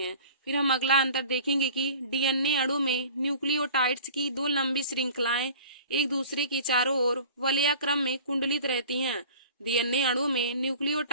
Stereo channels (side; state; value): both; inverted; correlation -0.43